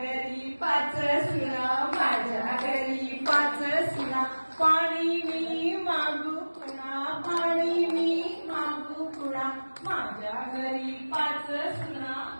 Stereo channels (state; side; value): inverted; both; correlation -1.00